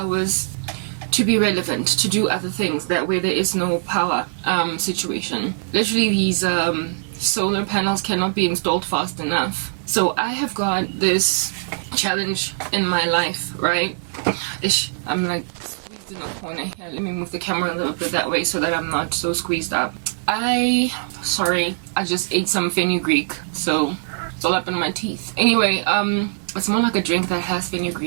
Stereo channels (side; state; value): left; silent; digital silence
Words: to be relevant, to do other things that where there is no power situation. Literally, these solar panels cannot be installed fast enough. So I have got this challenge in my life, right? I'm like in the corner here. Let me move the camera a little bit that way so that I'm not so squeezed up. I just ate some fenugreek, so it's all up in my teeth. Anyway, it's more like a drink that has